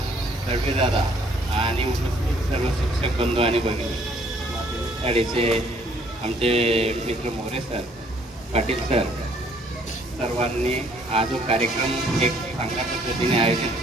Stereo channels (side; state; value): both; normal; correlation 0.62